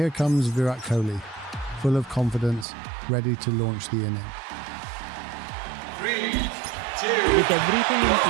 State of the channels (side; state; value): left; drops out; at 2.7 s